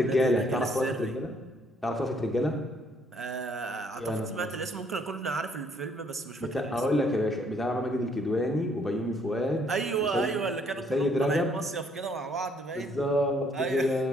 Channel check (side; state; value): both; normal; correlation 0.66